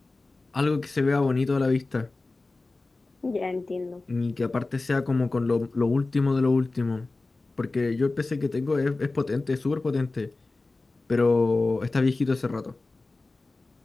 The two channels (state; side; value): quieter; right; 3.4 dB